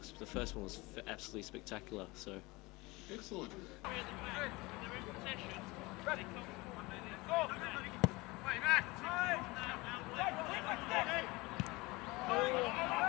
The first one was absolutely spectacular. So. Excellent.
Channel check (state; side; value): quieter; right; 23.1 dB